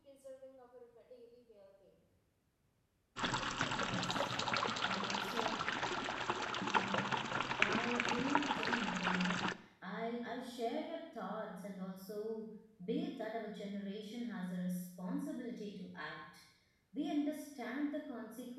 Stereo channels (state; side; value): identical; both; correlation 1.00